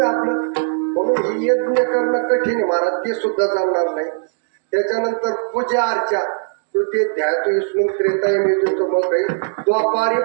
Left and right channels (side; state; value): left; silent; digital silence